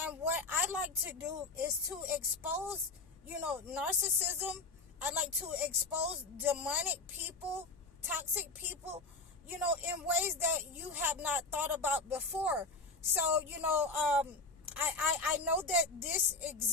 what I like to do is to expose, narcissism. I like to expose demonic people, toxic people, in ways that you have not thought about before. So, I know that this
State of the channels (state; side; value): quieter; right; 3.6 dB